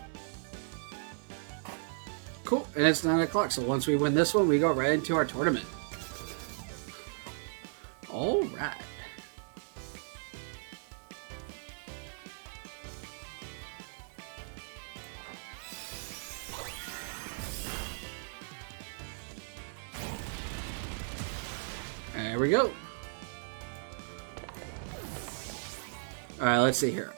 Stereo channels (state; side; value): silent; left; 54 dB below the other